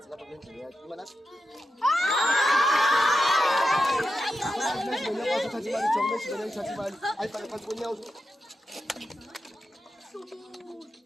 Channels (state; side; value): normal; both; correlation 0.88